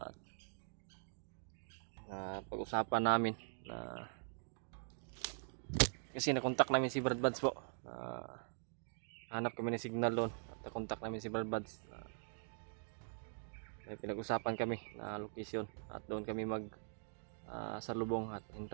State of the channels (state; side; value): silent; left; digital silence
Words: Pag-usapan namin na kasi nakontak namin si Brad Buds po. Hanap kami ng signal doon at nakontak namin si Brad Buds. May pinag-usapan kami na location at doon kami salubong at